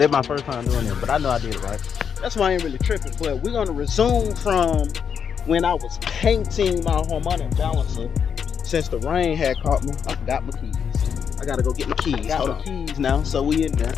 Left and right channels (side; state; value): right; quieter; 7.2 dB